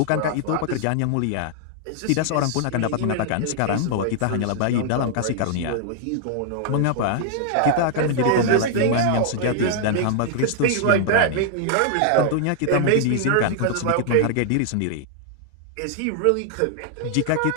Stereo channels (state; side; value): different; both; correlation 0.00